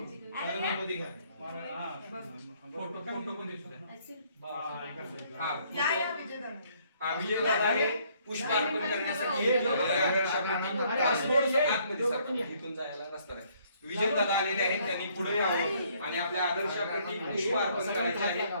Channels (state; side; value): inverted; both; correlation -0.65